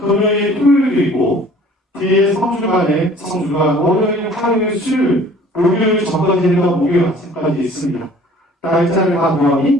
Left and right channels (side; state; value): both; normal; correlation 0.51